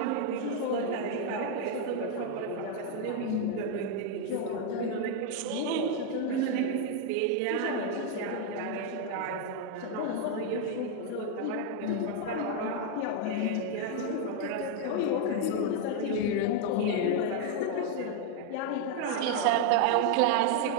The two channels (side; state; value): both; different; correlation 0.00